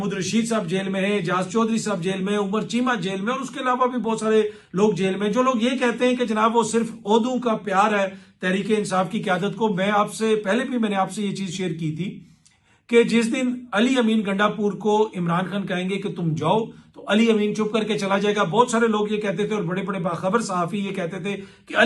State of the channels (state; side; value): identical; both; correlation 1.00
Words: रशीद साहब जेल में है, जाज चौधरी साहब जेल में है, उमर चीमा जेल में, और उसके अलावा भी बहुत सारे लोग जेल में। जो लोग ये कहते हैं कि जनाब वो सिर्फ ओहदों का प्यार है तहरीक इंसाफ की क्यादत को, मैं आपसे पहले भी मैंने आपसे ये चीज शेयर की थी कि जिस दिन अली अमीन गंडापुर को इमरान खान कहेंगे कि तुम जाओ, तो अली अमीन चुप करके चला जाएगा। बहुत सारे लोग ये कहते थे और बड़े बड़े बाखबर सहाफी ये कहते थे कि